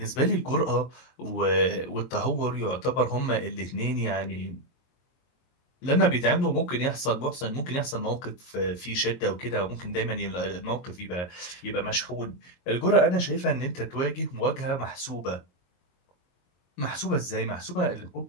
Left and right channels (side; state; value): right; late; 22 ms